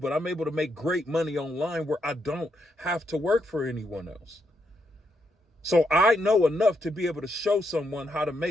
I'm able to make great money online where I don't have to work for anyone else. So I know enough to be able to show someone how to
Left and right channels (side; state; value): both; normal; correlation 0.79